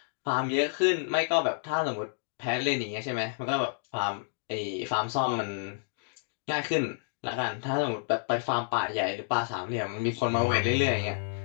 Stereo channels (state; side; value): silent; right; digital silence